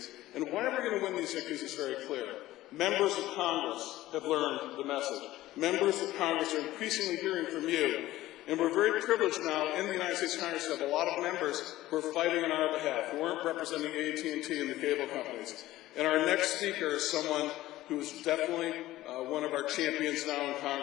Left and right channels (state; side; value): quieter; right; 15.9 dB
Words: And why we're going to win these victories is very clear. Members of Congress have learned the message. Members of Congress are increasingly hearing from you. And we're very privileged now in the United States Congress to have a lot of members who are fighting on our behalf, who aren't representing AT&T and the cable companies. And our next speaker is someone who is definitely one of our champions now in